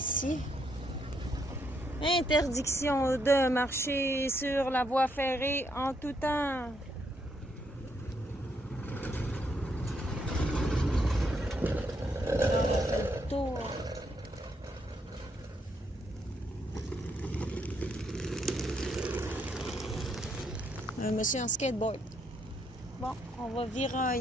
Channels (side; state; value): both; normal; correlation 0.75